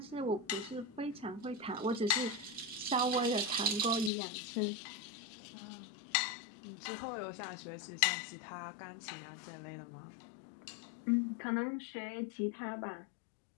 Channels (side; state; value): right; drops out; at 4.1 s